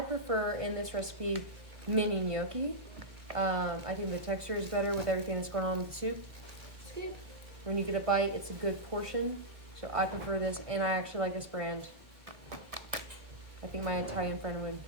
prefer in this recipe mini gnocchi. I think the texture is better with everything that's going on with the soup. Soup. When you get a bite, it's a good portion. So I prefer this, and I actually like this brand. I think my Italian friend would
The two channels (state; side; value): late; left; 1.3 ms